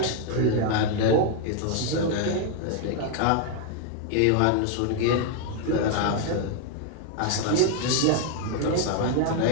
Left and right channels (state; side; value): different; both; correlation 0.00